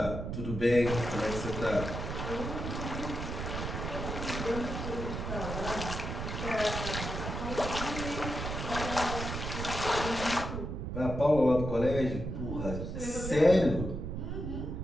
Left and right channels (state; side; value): noise; right; rumble, 4 dB below the sound